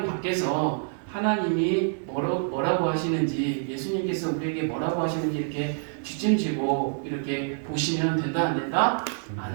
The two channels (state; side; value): silent; left; 60 dB below the other